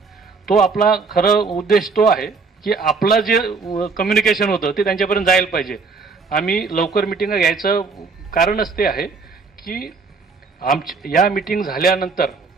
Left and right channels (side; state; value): left; quieter; 4.6 dB